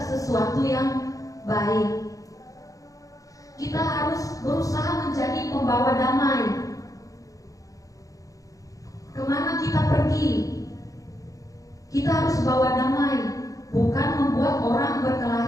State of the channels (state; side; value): late; right; 0.17 ms